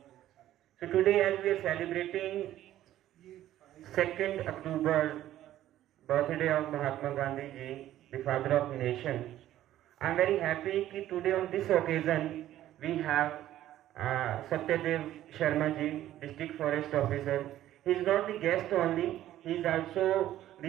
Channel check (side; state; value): left; quieter; 13.1 dB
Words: So today as we are celebrating 2nd October, birthday of Mahatma Gandhi ji, the father of nation, I am very happy that today on this occasion we have Satyadev Sharma ji, District Forest Officer. He is not the guest only, he is also